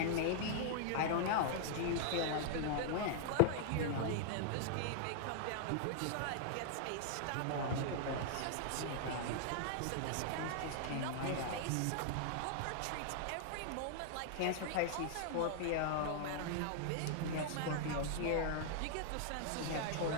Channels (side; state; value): both; different; correlation -0.01